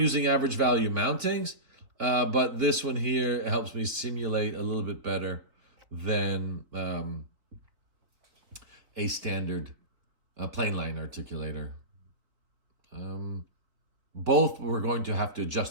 average value mountings. But this one here helps me simulate a little bit better than a standard plain line articulator. Both we're going to have to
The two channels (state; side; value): late; left; 4.1 ms